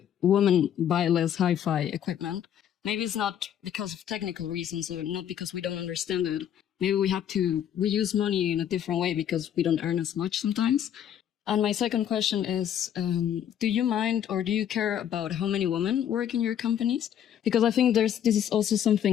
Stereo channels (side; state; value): right; quieter; 9.8 dB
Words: women buy less hi-fi equipment? Maybe it's not because of technical reasons or not because we don't understand it. Maybe we use money in a different way because we don't earn as much sometimes. And my second question is, do you mind or do you care about how many women work in your companies? Because I think this is also